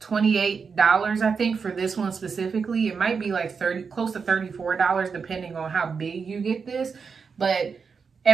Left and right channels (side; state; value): left; quieter; 5.6 dB